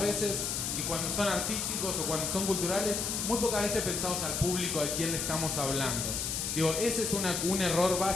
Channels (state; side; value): noise; left; hiss, 1 dB below the sound